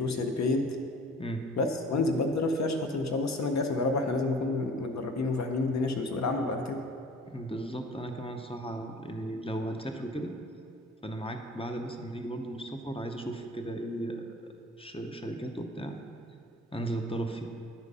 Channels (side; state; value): both; normal; correlation 0.46